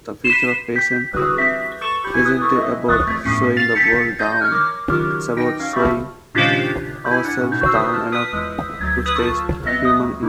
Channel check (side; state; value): both; identical; correlation 1.00